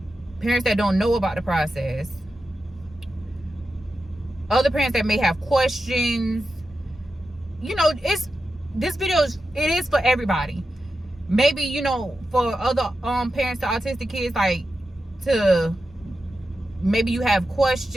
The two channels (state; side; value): normal; both; correlation 0.90